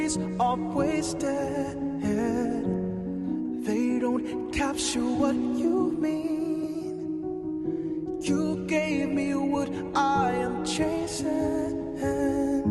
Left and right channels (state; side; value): identical; both; correlation 1.00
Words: memories are wasted. They don't capture what you mean. You gave me what I am chasing.